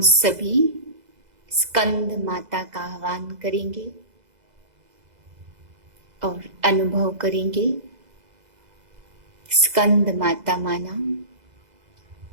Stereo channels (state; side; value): late; left; 2.0 ms